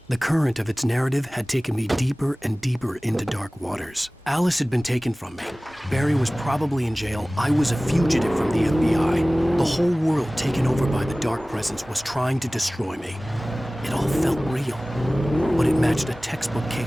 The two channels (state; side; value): normal; both; correlation 0.98